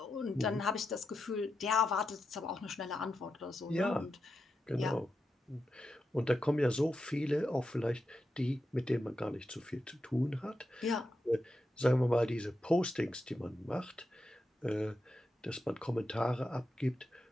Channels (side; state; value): both; normal; correlation 0.87